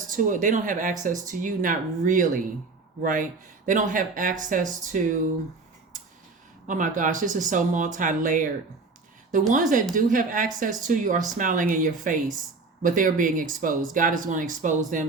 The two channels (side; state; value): left; quieter; 4.0 dB